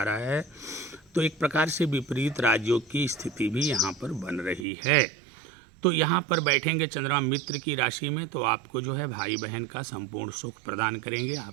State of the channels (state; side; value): drops out; left; at 4.7 s